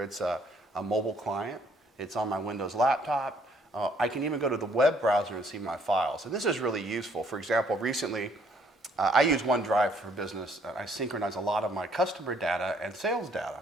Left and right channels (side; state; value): both; normal; correlation 0.64